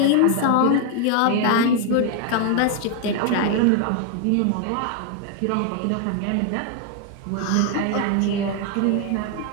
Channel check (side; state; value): both; different; correlation 0.00